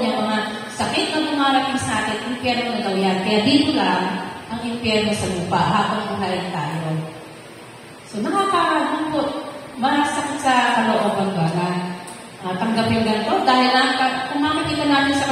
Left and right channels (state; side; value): identical; both; correlation 1.00